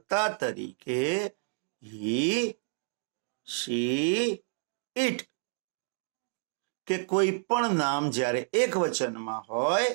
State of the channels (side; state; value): left; silent; digital silence